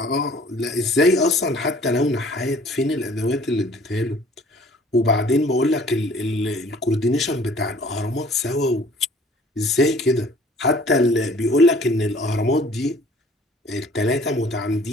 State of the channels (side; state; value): both; normal; correlation 0.53